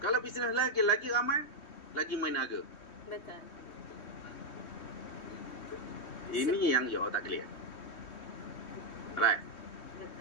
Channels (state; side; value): late; right; 3.1 ms